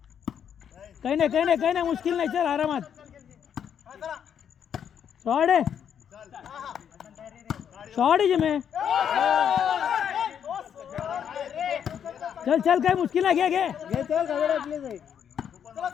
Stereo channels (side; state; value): right; quieter; 8.5 dB